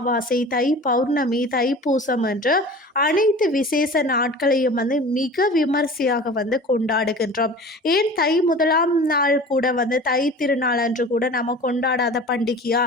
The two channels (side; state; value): both; normal; correlation 0.39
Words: தை பௌர்ணமி, தை பூசம் என்று அனைத்து விசேஷ நாட்களையும் மிக விமர்சையாக கொண்டாடுகின்றோம். ஏன் தை முதலாம் நாள் கூட தை திருநாள் அன்று கூட நம்ம கொண்டாடாத பண்டிகையா?